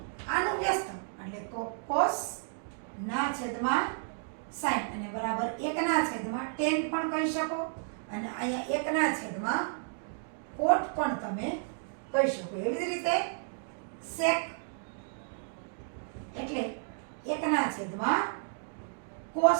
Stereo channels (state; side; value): silent; left; digital silence